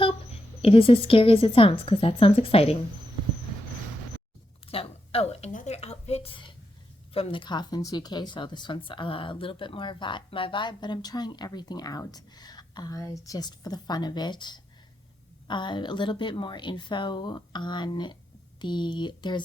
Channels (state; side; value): normal; both; correlation 0.84